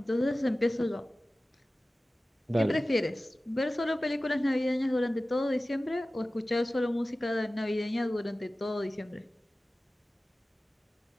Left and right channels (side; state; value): both; normal; correlation 0.96